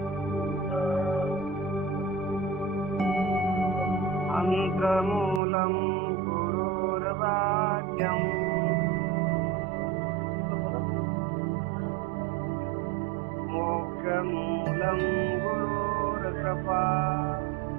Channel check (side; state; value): left; drops out; at 5.4 s